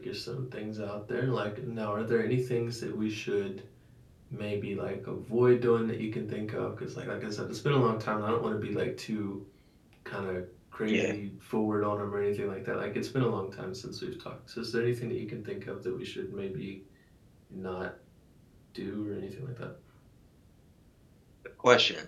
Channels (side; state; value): both; identical; correlation 1.00